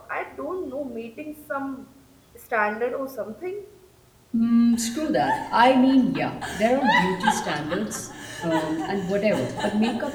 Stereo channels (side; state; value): both; identical; correlation 1.00